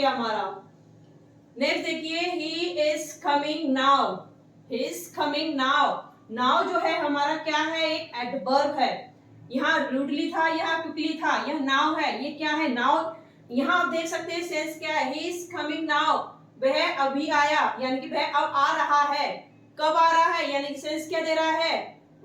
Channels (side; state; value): both; identical; correlation 1.00